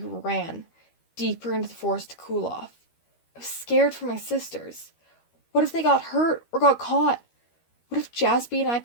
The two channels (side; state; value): right; late; 13 ms